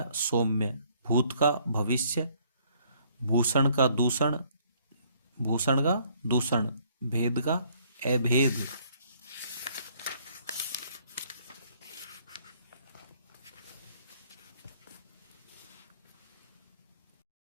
सौम्य। भूत का भविष्य। भूषण का दूषण। भूषण का दूषण। भेद का अभेद।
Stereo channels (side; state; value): both; inverted; correlation -0.64